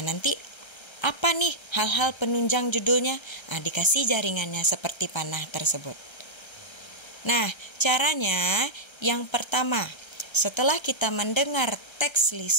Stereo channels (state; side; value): late; right; 1.3 ms